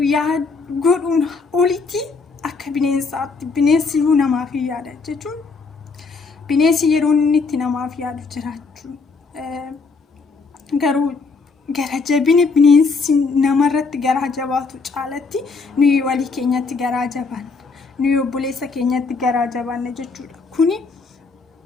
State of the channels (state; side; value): quieter; right; 4.4 dB